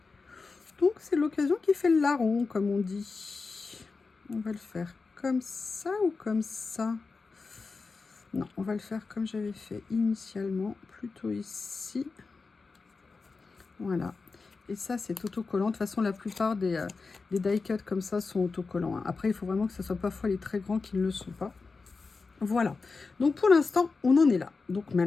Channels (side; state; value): right; quieter; 4.3 dB